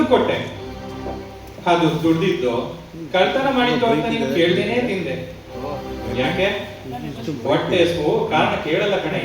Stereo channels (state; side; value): identical; both; correlation 1.00